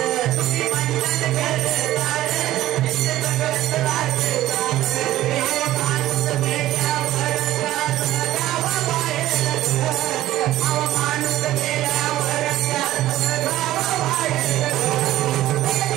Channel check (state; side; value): quieter; left; 14.7 dB